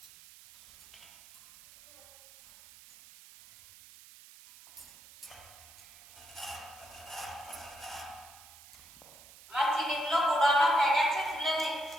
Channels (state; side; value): noise; right; hiss, 21 dB below the sound